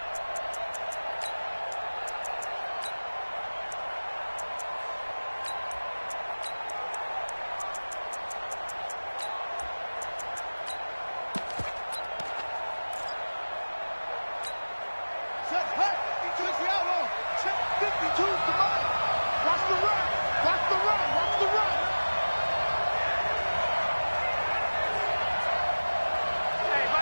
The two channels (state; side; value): inverted; both; correlation -1.00